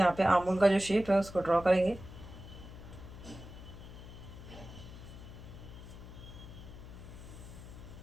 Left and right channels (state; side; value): noise; left; hum, 14 dB below the sound